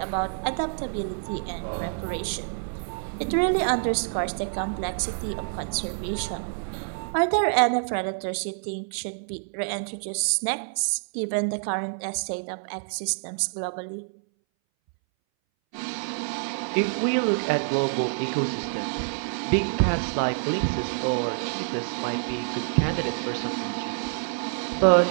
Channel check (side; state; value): left; silent; 60 dB below the other